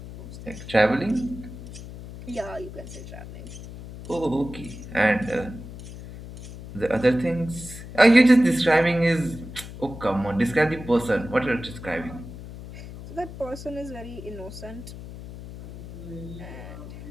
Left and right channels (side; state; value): left; noise; hum, 13 dB below the sound